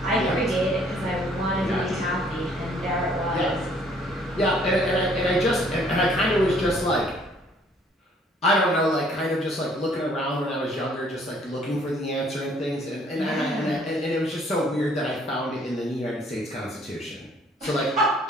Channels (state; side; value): normal; both; correlation 0.61